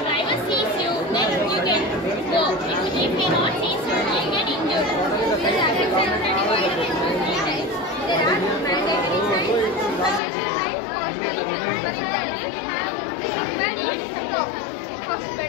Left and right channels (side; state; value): right; drops out; at 10.2 s